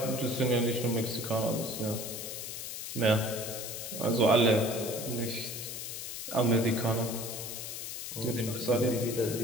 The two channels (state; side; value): noise; left; hiss, 7 dB below the sound